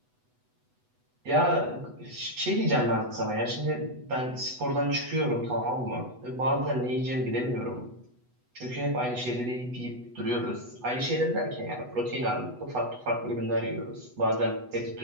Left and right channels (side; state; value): left; late; 8.1 ms